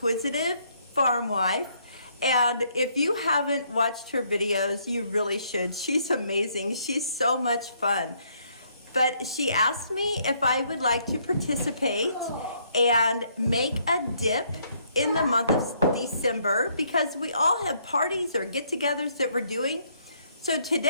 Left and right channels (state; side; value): inverted; both; correlation -0.69